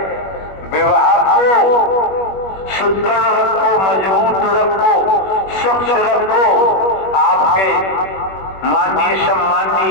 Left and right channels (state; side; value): late; right; 21 ms